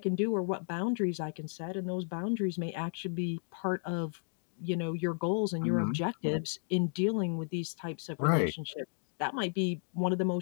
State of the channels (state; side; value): silent; right; digital silence